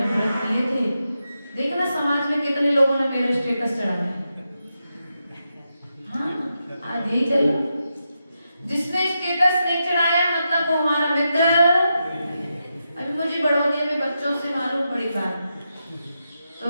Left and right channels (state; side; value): inverted; both; correlation -0.87